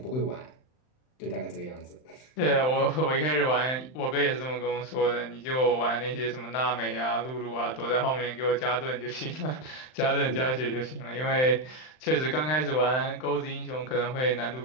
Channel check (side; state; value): right; late; 39 ms